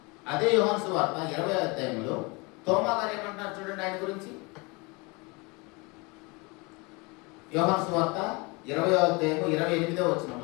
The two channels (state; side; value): quieter; right; 27.6 dB